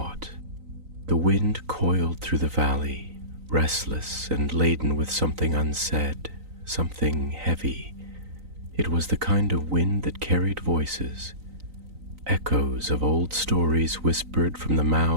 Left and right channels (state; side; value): late; left; 3.9 ms